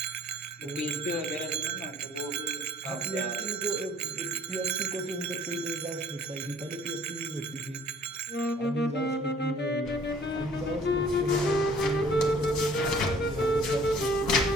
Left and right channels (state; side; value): normal; both; correlation 0.55